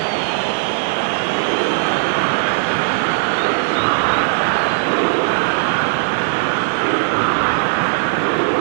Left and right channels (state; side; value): silent; left; digital silence